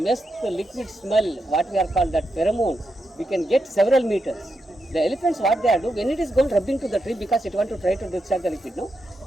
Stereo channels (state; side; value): normal; both; correlation 0.85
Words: the liquid smell, what we are called that pheromone, we can get several meters. The elephants, what they are doing, when it is going rubbing to the tree because it wants to try to discharge the liquid, no?